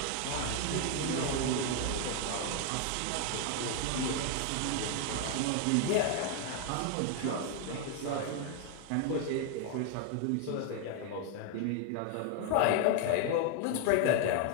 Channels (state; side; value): different; both; correlation 0.01